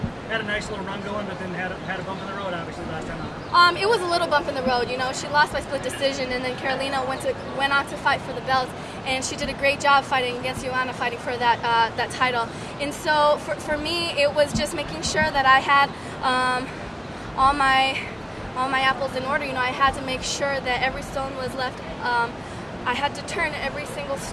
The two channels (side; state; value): both; identical; correlation 1.00